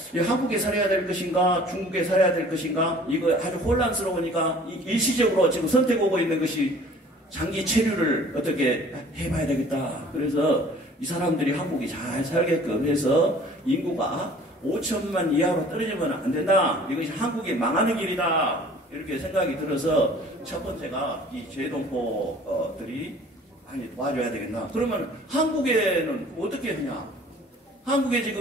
한국에 살아야 될 것인가, 중국에 살아야 될 것인가, 이거 아주 혼란스러우니까 일시적으로 지금 선택하고 있는 것이 장기 체류를 어떻게 해봐야 되겠다. 그래서 이 사람들이 한국이 잘 살게끔 해서 인구가 5천만 이하로 떨어지면 안 된다. 이것이 한국이 망하는 길이다. 이렇게 생각이 들어서 첫 번째가 이 재동포들이 많이 도와줘야 되겠나. 그러면 한국에는 어떻게 하냐. 한국에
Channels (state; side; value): normal; both; correlation 0.50